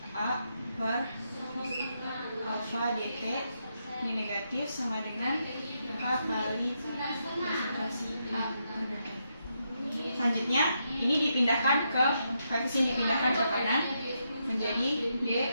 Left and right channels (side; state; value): both; inverted; correlation -0.81